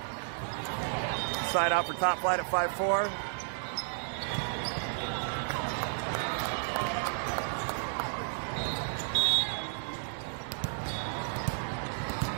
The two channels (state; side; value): silent; left; digital silence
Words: Side out for Top Flight at 5-4.